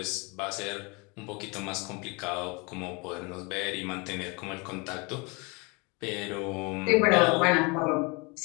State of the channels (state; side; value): quieter; right; 29.2 dB